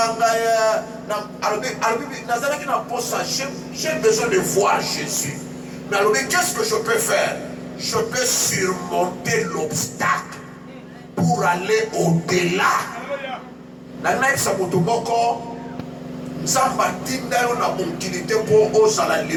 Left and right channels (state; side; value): identical; both; correlation 1.00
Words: ye, na albi nazala ki na posa, j'ai besoin de voir Jésus. Mais alors, qu'est-ce que je peux faire? Je peux surmonter l'obstacle pour aller au-delà. La naïf sa motomoko, Samba tinda yo na mobilité pour oser la